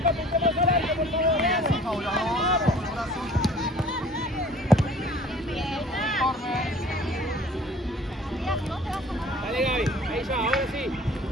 puntemos al aire, por favor. Bien, Paula, vamos. Brazo. Dale, Gaby, ahí ya, ahora sí.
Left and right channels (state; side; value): normal; both; correlation 0.49